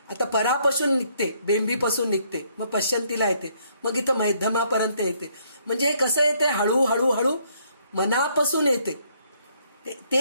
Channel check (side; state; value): both; inverted; correlation -0.69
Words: आता परापासून निघते, बेंबीपासून निघते, मग पश्चंतीला येते, मग इथं मध्यमापर्यंत येते. म्हणजे हे कसं येते, हळूहळू मनापासून येते.